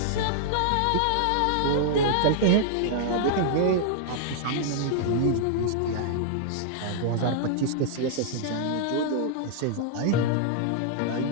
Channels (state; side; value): different; both; correlation -0.01